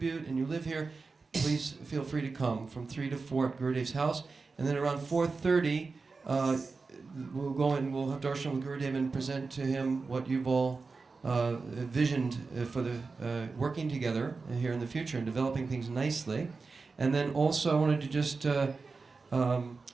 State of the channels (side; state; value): left; quieter; 4.3 dB